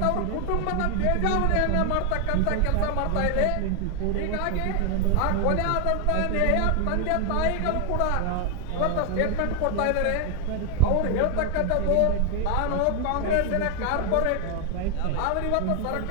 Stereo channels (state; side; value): different; both; correlation 0.00